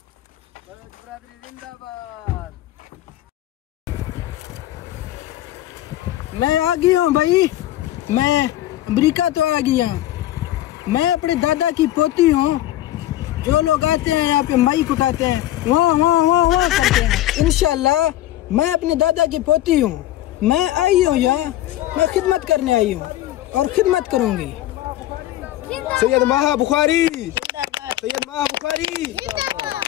बलोच बरादरी जिंदाबाद। मैं आ गया हूँ भाई, मैं अमेरिका तो आ गया। मैं अपने दादा की पोती हूँ। जो लोग आते हैं यहाँ पे माइक उठाते हैं, वाह वाह वाह वाह करते हैं। इंशाल्लाह मैं अपने दादा की पोती हूँ। मैं आई हूँ यहाँ, मैं खिदमत करने आई हूँ और खिदमत करूँगी। सैयद माह बुखारी, सैयद माह बुखारी।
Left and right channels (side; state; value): right; quieter; 14.4 dB